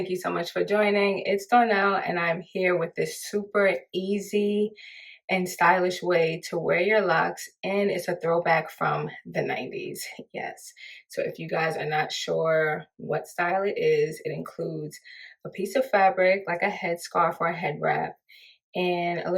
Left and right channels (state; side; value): identical; both; correlation 1.00